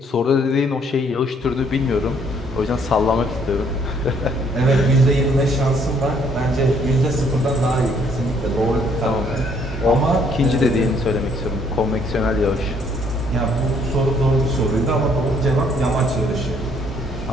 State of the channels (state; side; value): normal; both; correlation 0.65